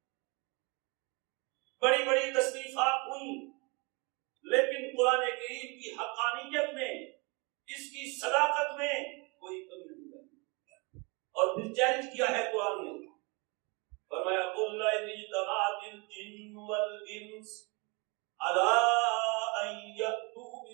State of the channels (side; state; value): left; quieter; 29.6 dB